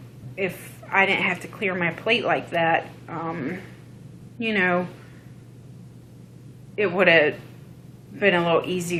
I didn't have to clear my plate like that, it would have been a little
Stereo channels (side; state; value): both; identical; correlation 1.00